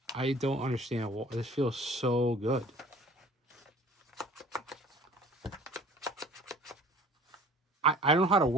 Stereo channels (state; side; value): normal; both; correlation 0.48